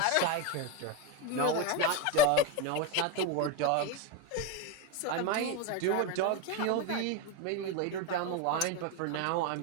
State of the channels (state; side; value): different; both; correlation 0.04